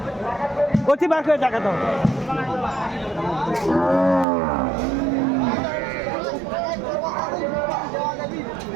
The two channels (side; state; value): left; drops out; at 4.2 s